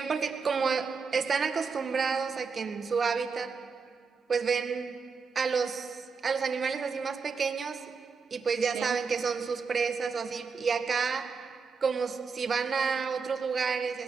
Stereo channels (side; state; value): left; quieter; 5.2 dB